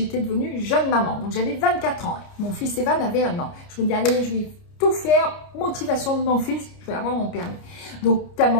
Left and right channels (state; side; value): late; right; 29 ms